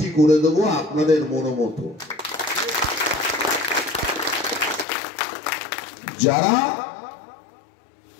করে দেবো আপনাদের মনোমতো, যারা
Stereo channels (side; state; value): right; drops out; at 4.9 s